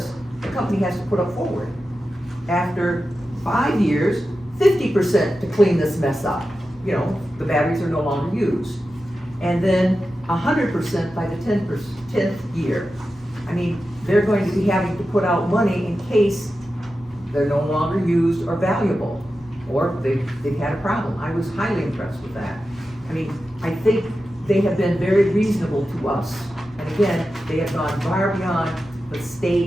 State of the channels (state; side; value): normal; both; correlation 0.92